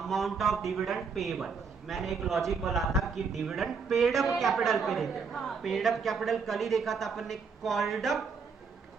amount of dividend payable. मैंने एक लॉजिक बोला था कि डिविडेंड पेड अप कैपिटल पे देते हैं। पेड अप कैपिटल कल ही देखा था अपन ने। कॉल्ड अप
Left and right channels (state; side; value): quieter; left; 5.4 dB